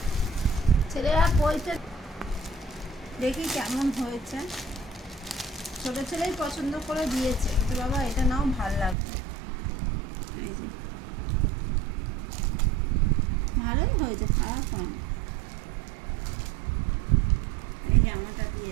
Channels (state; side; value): drops out; left; at 9.0 s